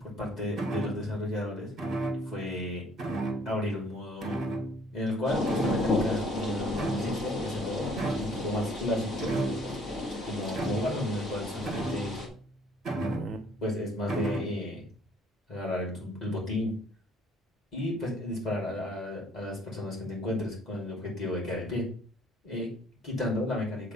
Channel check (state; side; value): normal; both; correlation 0.59